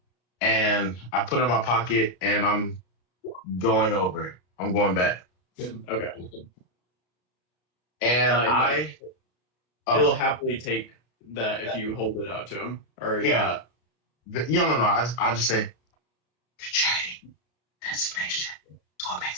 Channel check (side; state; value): right; late; 33 ms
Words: and I put it in my pocket, and I'm going over. I'm going back, Okay. and He'll happily take that if you hold it out to him. Or Yeah. No. I just say, "Good chatting. Destination. It's what